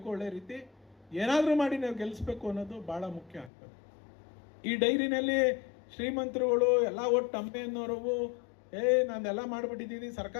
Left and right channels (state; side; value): drops out; right; at 3.5 s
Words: ಒಳ್ಳೆ ರೀತಿ ಏನಾದರೂ ಮಾಡಿ ನಾವು ಗೆಲ್ಲಿಸ್ಬೇಕು ಅನ್ನೋದು ಭಾಳ ಮುಖ್ಯ ಆಗ್ತದೆ. ಈ ಡೈರಿನಲ್ಲಿ ಶ್ರೀಮಂತರುಗಳು ಎಲ್ಲ ಒಟ್ಟು ಅಮ್ಮೆ ಅನ್ನೋರು ನಾನೆಲ್ಲ ಮಾಡಿಬಿಟ್ಟಿದ್ದೀನಿ,